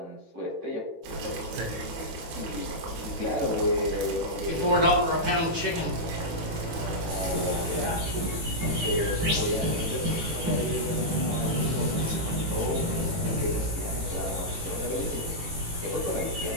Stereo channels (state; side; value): late; left; 18 ms